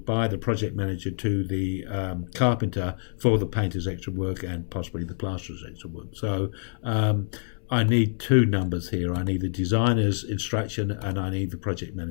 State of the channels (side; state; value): right; silent; 60 dB below the other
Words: by the project manager to the carpenter for the painter's extra work and possibly the plasterer's extra work. So I need 2 numbers here. I need the designer's instruction and I need the project